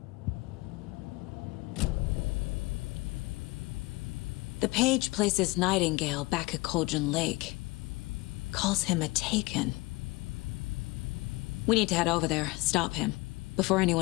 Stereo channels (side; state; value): right; quieter; 22.9 dB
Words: The page places Nightingale back at Cauldron Lake. Calls him a Taken. We need to head over there, stop him, before